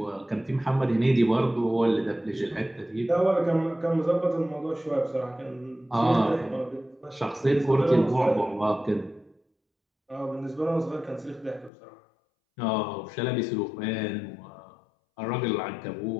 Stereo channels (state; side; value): drops out; right; at 11.7 s